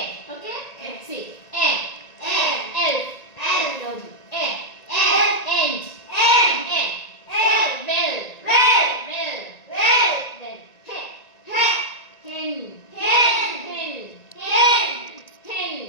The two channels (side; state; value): right; late; 1.9 ms